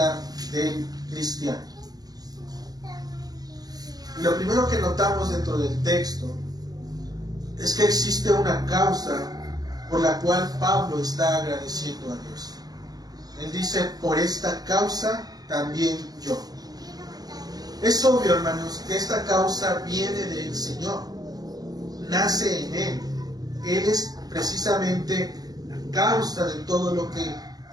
del cristiano. Y lo primero que notamos dentro del texto es que existe una causa por la cual Pablo está agradeciendo a Dios. Él dice, por esta causa también yo. Es obvio, hermanos, que esta causa viene del Señor, nace en Él. Él es precisamente la causa de todo lo que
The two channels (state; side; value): late; left; 0.19 ms